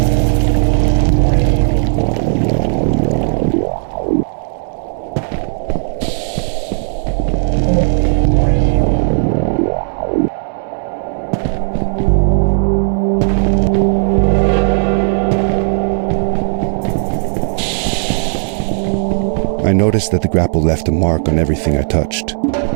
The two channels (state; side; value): silent; left; 66 dB below the other